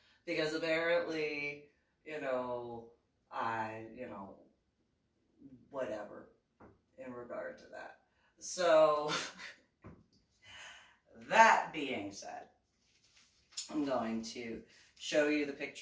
Because apparently, you know, whatever in regard to that. So, that being said, I'm going to show you the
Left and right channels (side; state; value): both; identical; correlation 1.00